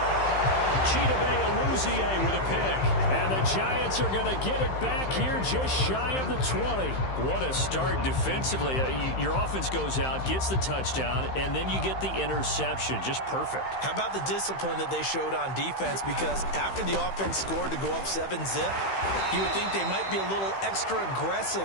Chidobe Awuzie with a pick. And the Giants are going to get it back here just shy of the 20. What a start defensively. Your offense goes out, gets the touchdown, and then you get the interception. Just perfect. How about the discipline that they showed on defense? Because after the offense scored to go up 7-zip, you would think they might be a little extra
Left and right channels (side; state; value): right; late; 15 ms